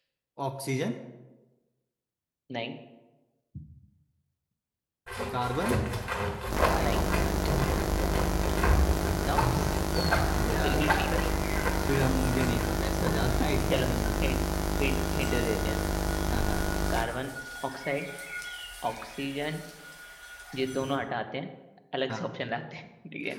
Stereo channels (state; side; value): identical; both; correlation 1.00